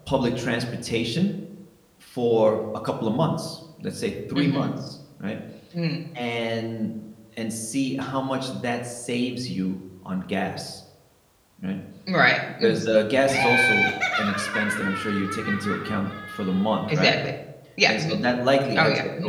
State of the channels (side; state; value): both; identical; correlation 1.00